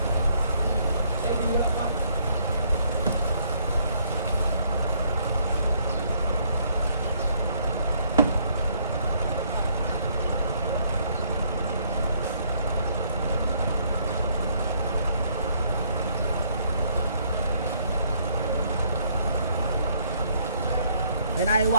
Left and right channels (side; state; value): both; inverted; correlation -0.67